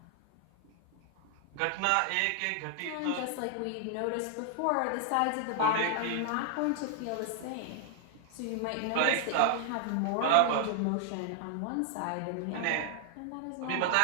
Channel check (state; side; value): different; both; correlation 0.00